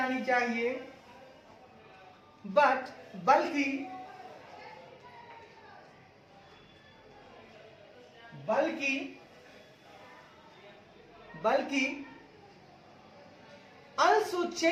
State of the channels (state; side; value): identical; both; correlation 1.00